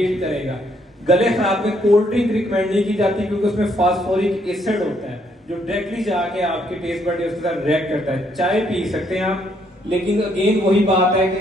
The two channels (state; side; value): normal; both; correlation 0.71